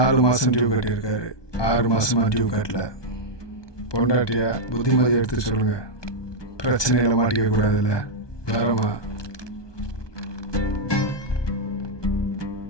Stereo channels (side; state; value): right; late; 1.2 ms